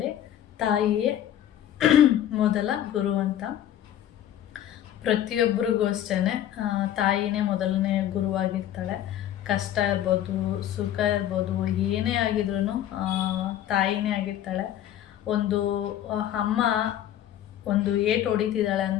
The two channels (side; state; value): right; quieter; 11.5 dB